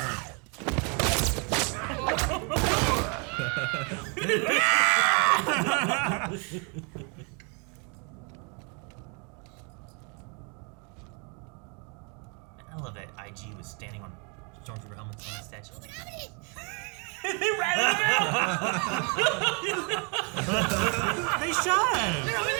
I love that IG was standing on Stormtrooper helmets on that statue. They shot him. They're over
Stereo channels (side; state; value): left; quieter; 35.1 dB